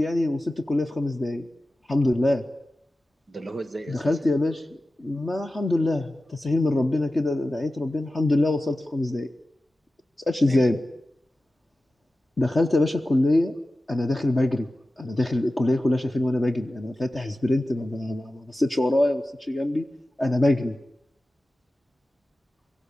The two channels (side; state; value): both; normal; correlation 0.95